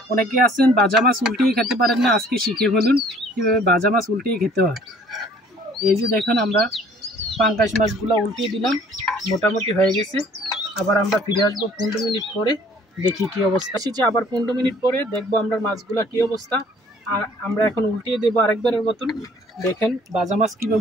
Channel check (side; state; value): both; normal; correlation 0.55